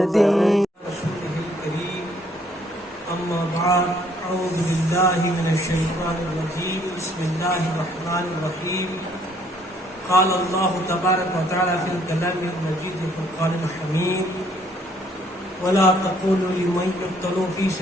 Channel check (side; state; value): both; normal; correlation 0.65